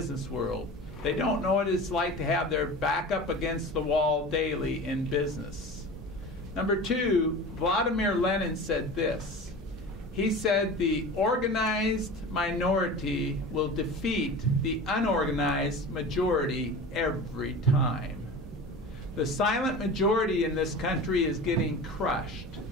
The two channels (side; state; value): both; normal; correlation 0.34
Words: world. They don't know what it's like to have their back up against the wall daily in business. Number 2, Vladimir Lenin said this. He said the organized minority will defeat the unorganized majority every time. The silent majority in this country is getting crushed.